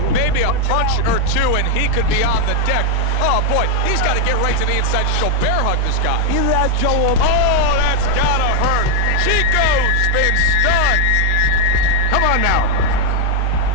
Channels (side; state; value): both; different; correlation 0.01